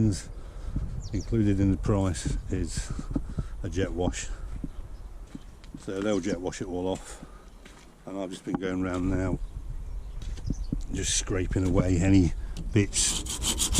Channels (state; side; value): identical; both; correlation 1.00